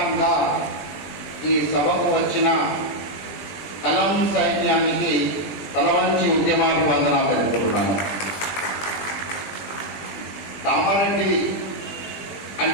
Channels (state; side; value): late; right; 20 ms